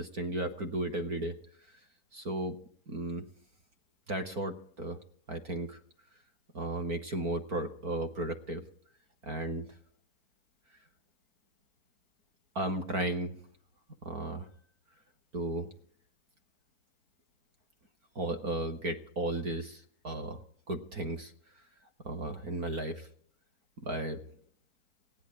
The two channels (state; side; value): late; left; 4.4 ms